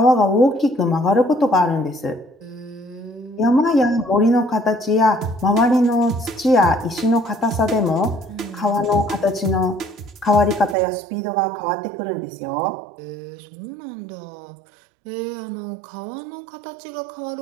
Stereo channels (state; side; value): drops out; left; at 10.8 s